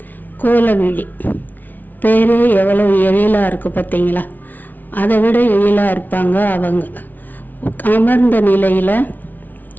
கோலவிழி பேரே எவ்வளோ எழிலாக இருக்குது பார்த்தீங்களா? அதை விட எழிலாக இருப்பாங்க அவங்க. அமர்ந்த நிலையில்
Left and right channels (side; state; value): right; late; 0.083 ms